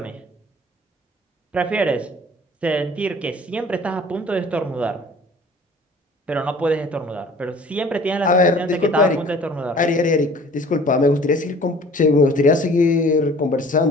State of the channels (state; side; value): normal; both; correlation 0.49